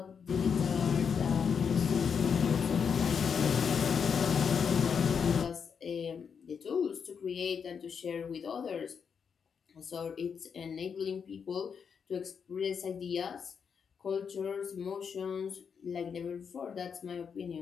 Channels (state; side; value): quieter; right; 6.6 dB